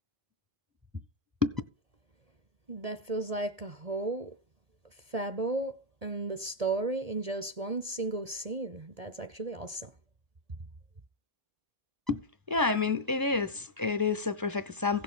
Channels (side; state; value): left; late; 1.7 ms